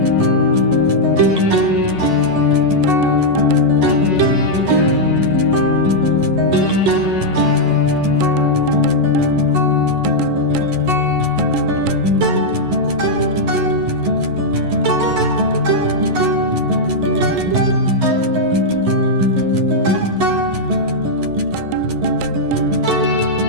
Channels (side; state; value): left; late; 11 ms